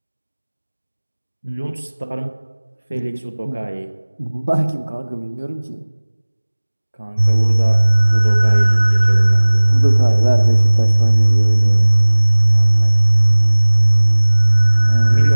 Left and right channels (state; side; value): inverted; both; correlation -1.00